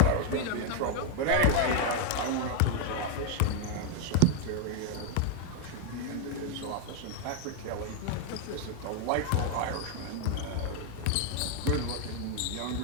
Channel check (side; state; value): both; different; correlation 0.01